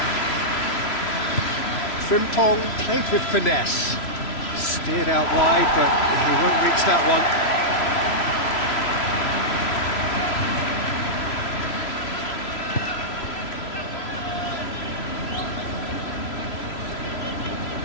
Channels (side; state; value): right; late; 3.0 ms